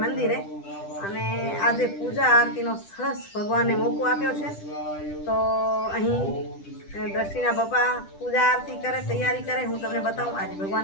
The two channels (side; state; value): right; late; 10 ms